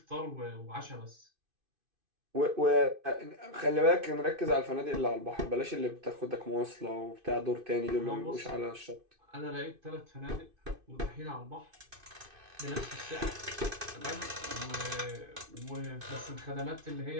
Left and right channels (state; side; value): late; left; 2.5 ms